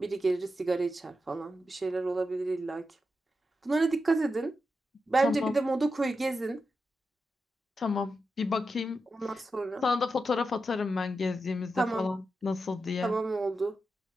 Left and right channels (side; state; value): both; normal; correlation 0.88